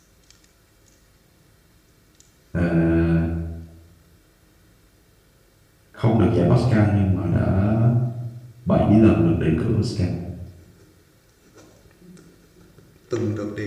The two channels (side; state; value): both; identical; correlation 1.00